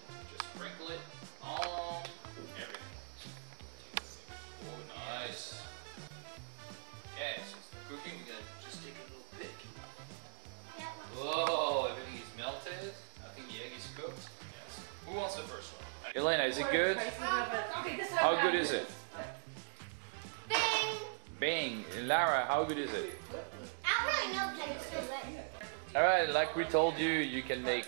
Just sprinkle it on everything. Oh, nice. Okay, so it's cooking. We're going to just take a little bit. Whoa, everything is melted. I think the egg is cooked. Yes. Who wants the first one? Elena, is it good? How good is it? Bang! Bang! Lara, how good is it? I don't really know because it's so good. Alright, like we told you, you can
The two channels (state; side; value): silent; left; digital silence